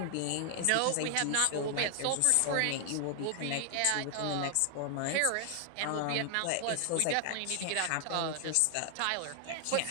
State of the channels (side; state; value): both; different; correlation 0.00